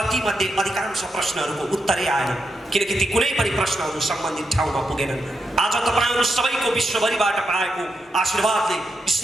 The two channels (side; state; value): both; normal; correlation 0.85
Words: तीमध्ये अधिकांश प्रश्नहरूको उत्तरै आएन, किनकि ती कुनै पनि प्रश्नहरू सम्बन्धित ठाउँमा पुगेनन्। आज तपाईँहरू सबैको विश्वभरिबाट पाएको आशीर्वादले,